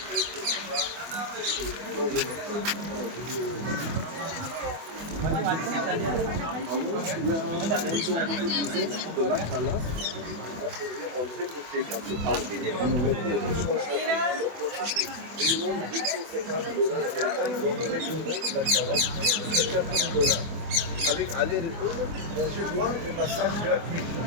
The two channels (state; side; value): late; left; 24 ms